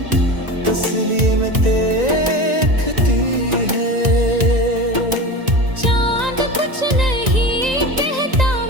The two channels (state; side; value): late; left; 1.9 ms